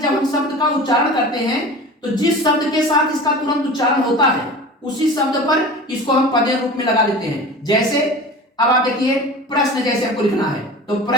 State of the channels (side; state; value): both; normal; correlation 0.36